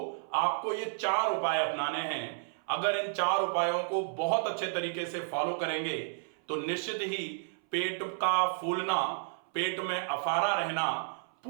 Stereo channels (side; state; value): left; silent; 57 dB below the other